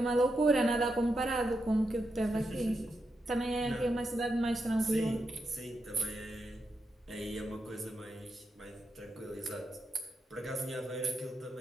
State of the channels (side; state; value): both; normal; correlation 0.85